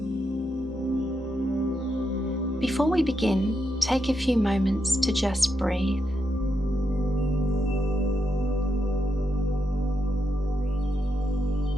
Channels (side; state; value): both; normal; correlation 0.83